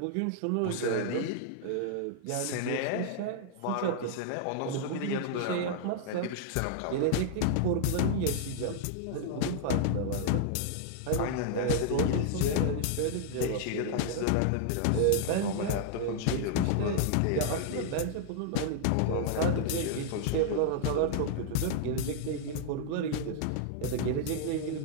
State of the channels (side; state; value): both; different; correlation -0.01